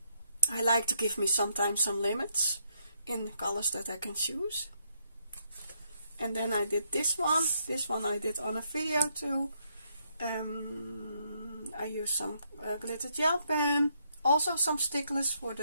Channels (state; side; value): inverted; both; correlation -0.75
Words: I like to give me sometimes some limits in the colors that I can choose. And then I did this one. This one I did on a video too. I used some glitter gel pen, also some sticklers for